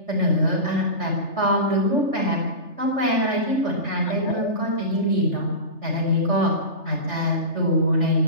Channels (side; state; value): right; late; 3.4 ms